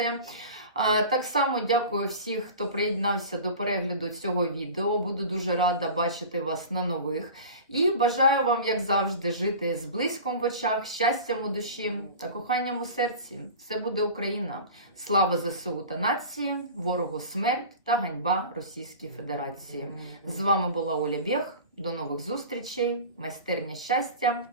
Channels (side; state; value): both; inverted; correlation -0.36